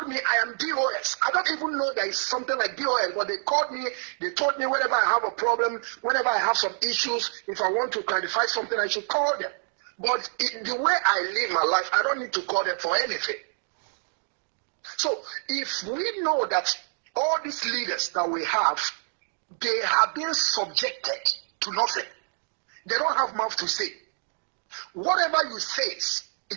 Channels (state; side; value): silent; left; digital silence